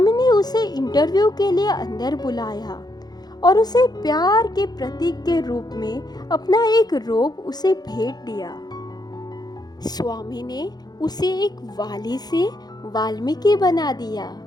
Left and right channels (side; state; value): right; late; 0.19 ms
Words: ने उसे इंटरव्यू के लिए अंदर बुलाया और उसे प्यार के प्रतीक के रूप में अपना एक रोब उसे भेंट दिया। स्वामी ने उसे एक वाली से वाल्मीकि बना दिया,